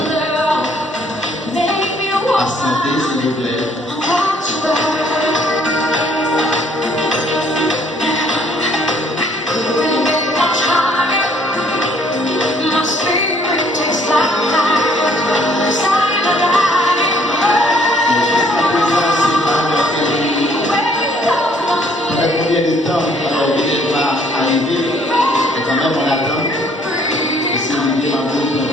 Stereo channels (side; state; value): both; normal; correlation 0.62